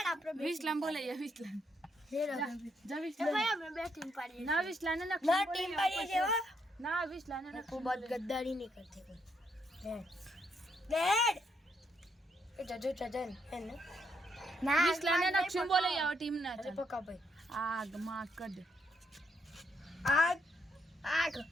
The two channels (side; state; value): both; normal; correlation 0.75